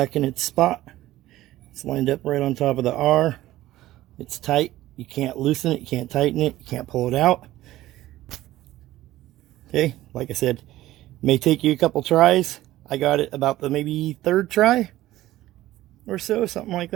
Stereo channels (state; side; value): quieter; left; 15.5 dB